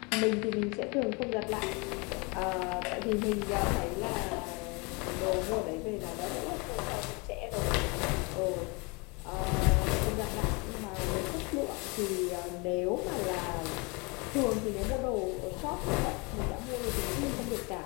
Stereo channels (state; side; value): quieter; right; 29.4 dB